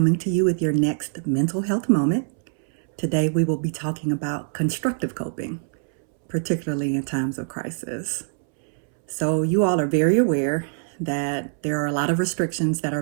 to you with your next mental health moment. Today we will be talking about constructive coping, particularly in times of crisis. So you all are very aware that there are a lot of restrictions that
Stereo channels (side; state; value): left; silent; 63 dB below the other